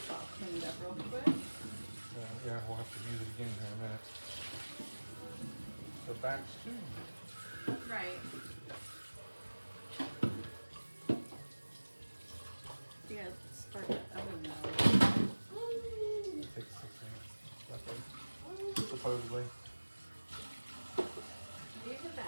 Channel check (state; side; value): inverted; both; correlation -1.00